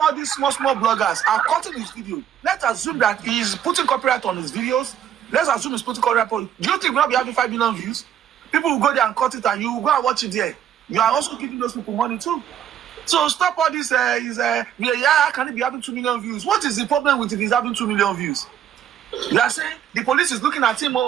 all these small bloggers are cutting his video, let's assume that he's putting copyright on his videos. Let's assume he's putting copyright on. Do you think we'll not be having 5 million views? People will go there and cut it, and you will go and watch it there. you are also giving those people money too. So stop all this. Can it be having 2 million views? What is the problem with it is having 2 million views? You are saying the police is looking at him.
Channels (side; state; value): left; quieter; 9.9 dB